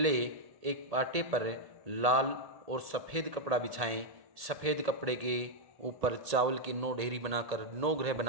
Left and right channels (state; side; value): late; left; 1.8 ms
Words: एक पाटे पर लाल और सफ़ेद कपड़ा बिछाएं। सफ़ेद कपड़े के ऊपर चावल की 9 ढेरी बनाकर 9 ग्रह